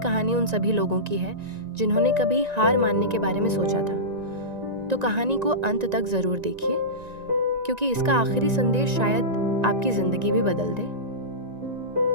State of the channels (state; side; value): late; left; 1.9 ms